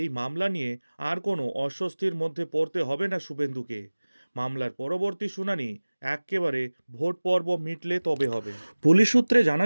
মামলা নিয়ে আর কোনো অস্বস্তির মধ্যে পড়তে হবে না শুভেন্দুকে। মামলার পরবর্তী শুনানি একেবারে ভোট পর্ব মিটলে তবে হবে। পুলিশ সূত্রে জানা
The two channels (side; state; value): both; inverted; correlation -1.00